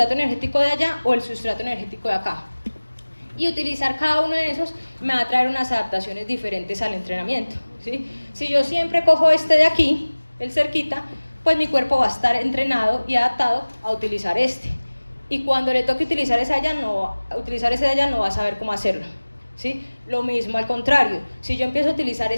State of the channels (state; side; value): inverted; both; correlation -1.00